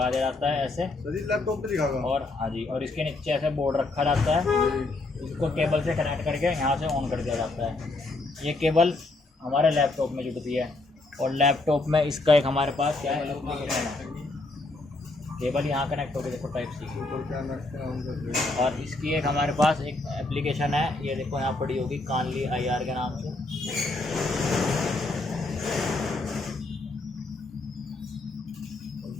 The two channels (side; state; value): right; quieter; 3.1 dB